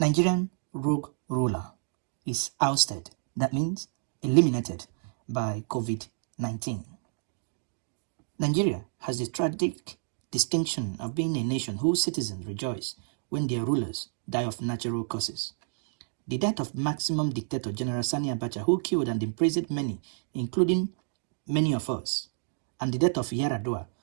rogue ruler is ousted. That means eliminated by COVID-19. Nigeria has the tragic distinction of being a nation whose citizens rejoice when their rulers die of natural causes. The death of maximum dictator General Sani Abacha, who killed and imprisoned many, including many of us, and the death of Yaradua,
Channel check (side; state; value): left; silent; digital silence